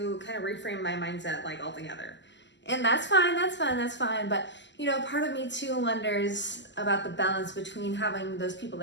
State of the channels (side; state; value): right; late; 0.53 ms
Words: kind of reframe my mindset like altogether. And that's fine. But, part of me too wonders about the balance between having those people